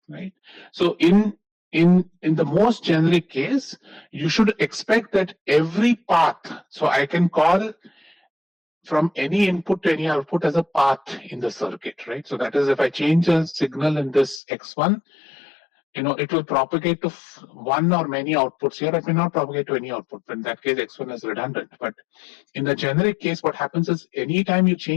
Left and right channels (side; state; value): right; drops out; at 14.4 s